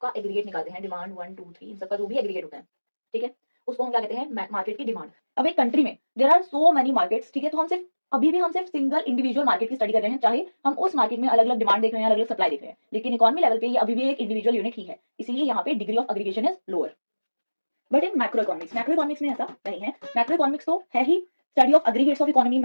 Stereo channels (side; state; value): both; inverted; correlation -1.00